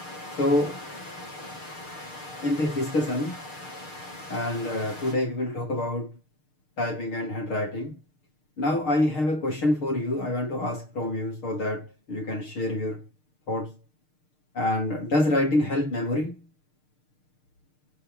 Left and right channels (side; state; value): right; late; 6.6 ms